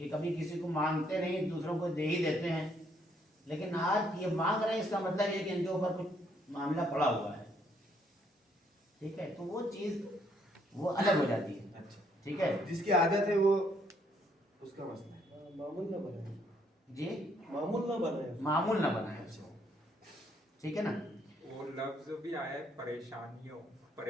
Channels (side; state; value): both; normal; correlation 0.69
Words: कभी किसी को मांगते नहीं, दूसरों को दे ही देते हैं। लेकिन आज ये मांग रहे हैं, इसका मतलब ये कि इनके ऊपर कुछ मामला पड़ा हुआ है, ठीक है। तो वो चीज़ वो अलग हो जाती है, अच्छा, ठीक है। जिसकी आदत है वो उसका मसला है, मामूल ना बनाए जी, मामूल ना बनाए मामूल ना बनाए, ठीक है ना। वो लफ्ज भी आया है परेशानियों,